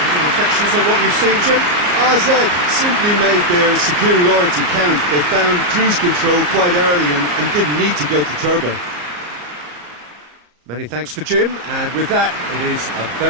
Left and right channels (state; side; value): late; left; 34 ms